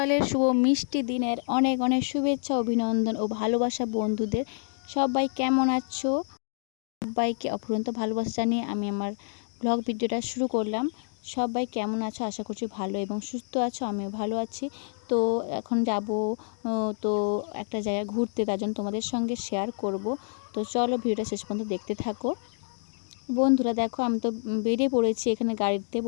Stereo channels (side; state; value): right; silent; digital silence